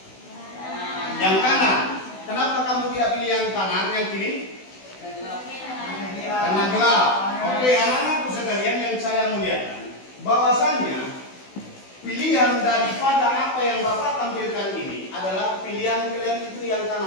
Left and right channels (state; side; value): late; right; 16 ms